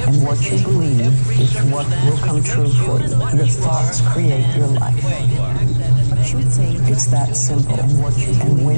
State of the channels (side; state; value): both; inverted; correlation -1.00